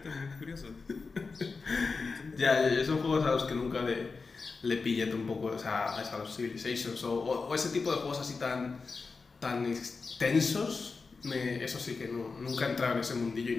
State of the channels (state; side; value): quieter; right; 4.4 dB